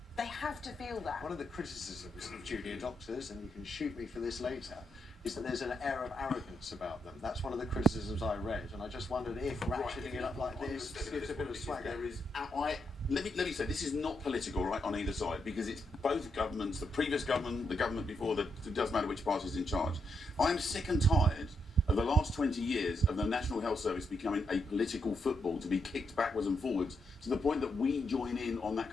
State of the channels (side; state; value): both; normal; correlation 0.80